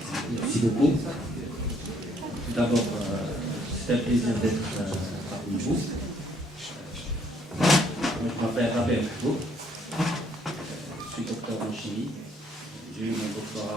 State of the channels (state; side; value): normal; both; correlation 0.66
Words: Merci beaucoup. Tout d'abord, c'est un plaisir d'être parmi vous. Je m'appelle Rabel Mahboub. Je suis docteur en chimie. J'ai eu mon